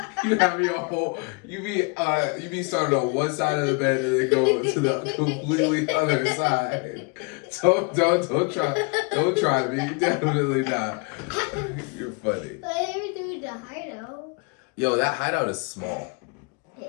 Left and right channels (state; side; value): quieter; right; 32.6 dB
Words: You have your whole. You be starting on one side of the bed and then go to the completely other side. Don't try me. Definitely not. You're funny. But I never do the hideout. Yo, that hideout is small.